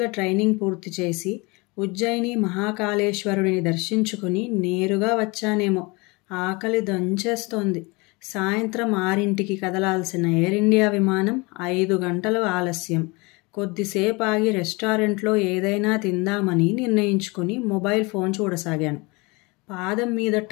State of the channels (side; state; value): right; quieter; 26.3 dB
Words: ట్రైనింగ్ పూర్తి చేసి ఉజ్జయిని మహాకాళేశ్వరుడిని దర్శించుకుని నేరుగా వచ్చానేమో. ఆకలి దంచేస్తోంది. సాయంత్రం 6ంటికి కదలాల్సిన ఎయిర్ ఇండియా విమానం 5 గంటలు ఆలస్యం. కొద్దిసేపు ఆగి రెస్టారెంట్లో ఏదైనా తిందామని నిర్ణయించుకుని మొబైల్ ఫోన్ చూడసాగాను. పాదం మీద